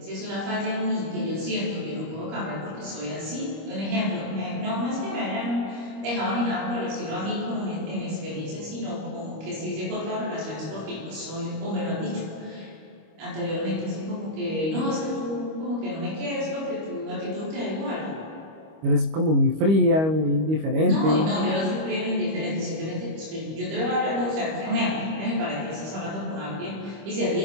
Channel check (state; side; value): late; left; 25 ms